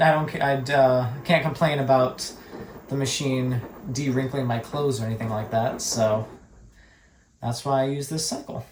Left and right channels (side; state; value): both; identical; correlation 1.00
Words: can't complain about the machine de-wrinkling my clothes or anything like that, so that's why I use this cycle.